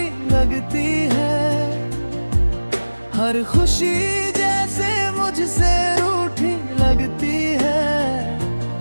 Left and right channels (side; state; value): both; inverted; correlation -1.00